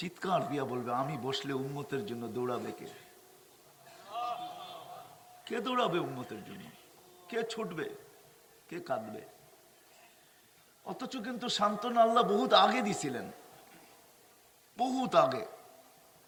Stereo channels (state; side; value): identical; both; correlation 1.00